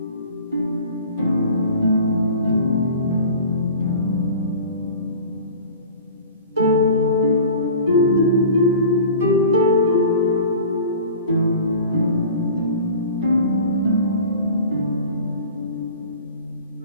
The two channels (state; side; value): inverted; both; correlation -0.40